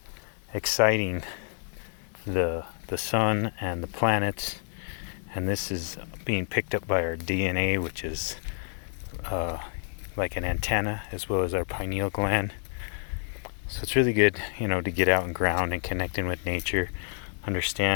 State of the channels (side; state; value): right; silent; 59 dB below the other